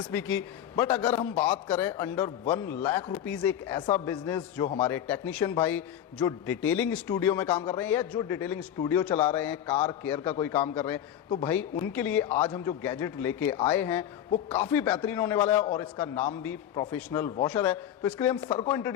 भी की। बट अगर हम बात करें अंडर 1 लाख रुपीस एक ऐसा बिजनेस जो हमारे टेक्नीशियन भाई जो डिटेलिंग स्टूडियो में काम कर रहे हैं या जो डिटेलिंग स्टूडियो चला रहे हैं, कार केयर का कोई काम कर रहे हैं, तो भाई उनके लिए आज हम जो गैजेट लेके आए हैं वो काफ़ी बेहतरीन होने वाला है और इसका नाम भी प्रोफेशनल वॉशर है। तो इसके लिए हम सर को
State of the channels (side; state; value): right; quieter; 10.6 dB